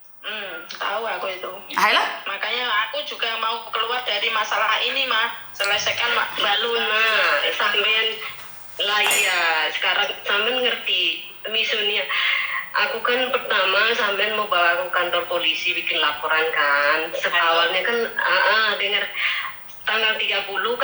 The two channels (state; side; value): identical; both; correlation 1.00